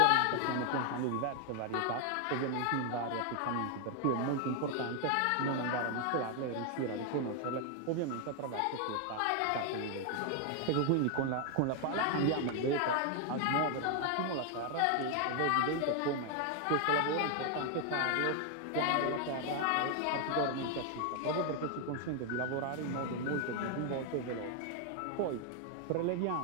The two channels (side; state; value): both; different; correlation 0.00